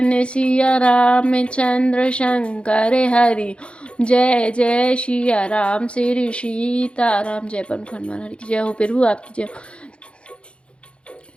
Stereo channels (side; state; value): right; late; 0.058 ms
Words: सिया रामचंद्र शंकर हरि, जय जय सिया राम श्री सीताराम। जय पवन हनुमान हरि की जय हो। प्रभु आपकी जय हो।